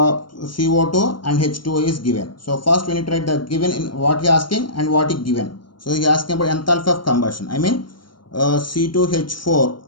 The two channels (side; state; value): right; late; 0.72 ms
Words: and H2O is given. So first we need to write the given in what he asking and what he given. So he asking about enthalpy of combustion. I mean C2H4